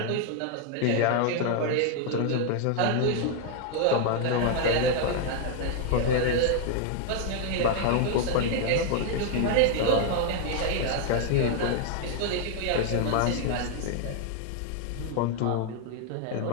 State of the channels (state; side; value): different; both; correlation 0.00